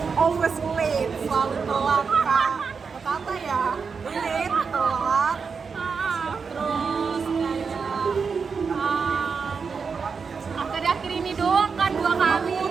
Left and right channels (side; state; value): left; quieter; 5.5 dB